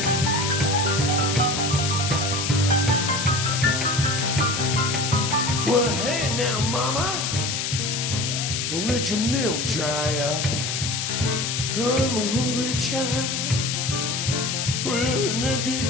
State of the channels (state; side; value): noise; left; hiss, 1 dB below the sound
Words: Well, hey now, mama, don't let your milk dry up. I'm a hungry child with an empty